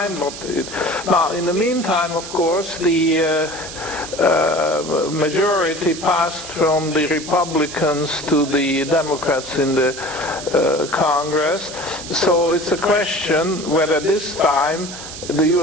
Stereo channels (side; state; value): right; noise; hiss, 11 dB below the sound